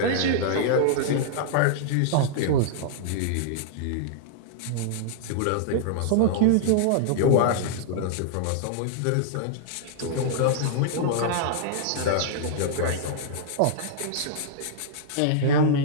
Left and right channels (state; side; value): different; both; correlation -0.01